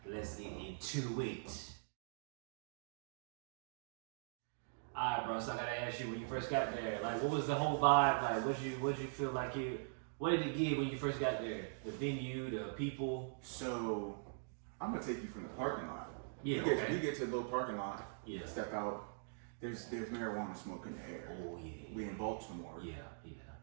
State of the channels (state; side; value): silent; left; digital silence